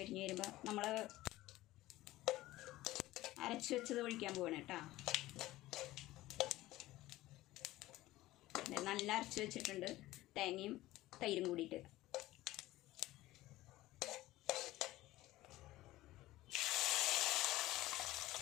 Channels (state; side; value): quieter; right; 16.9 dB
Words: വരുമ്പോൾ നമ്മൾ അരച്ച് വെച്ചത് ഒഴിക്കാൻ പോവാണ് കേട്ടോ. നല്ല അരച്ച് വെച്ചിട്ടുണ്ട്, തേങ്ങയും തൈരും കൂടിയിട്ട്.